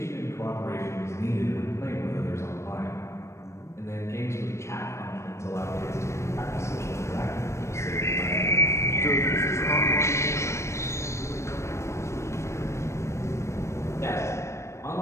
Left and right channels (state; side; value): late; right; 0.13 ms